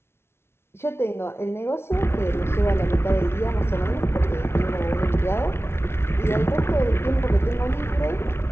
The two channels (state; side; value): late; right; 0.12 ms